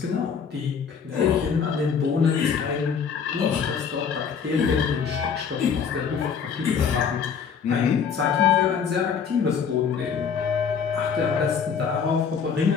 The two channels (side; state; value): right; quieter; 6.7 dB